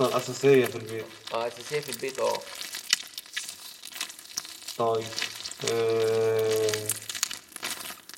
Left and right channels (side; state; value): both; identical; correlation 1.00